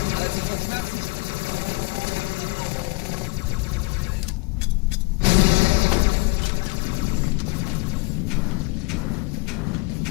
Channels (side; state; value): right; quieter; 26.7 dB